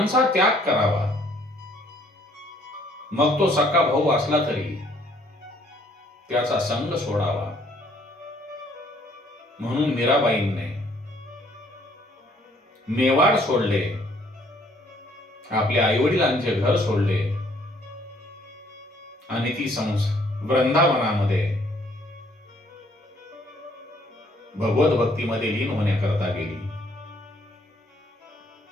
त्याग करावा. मग तो सक्का भाऊ असला तरी त्याचा संग सोडावा. म्हणून मीराबाईंने मेवाड सोडले, आपल्या आईवडिलांचे घर सोडले आणि ती वृंदावनामध्ये भगवत भक्तीमध्ये लीन होण्याकरता गेली.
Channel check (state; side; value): normal; both; correlation 0.63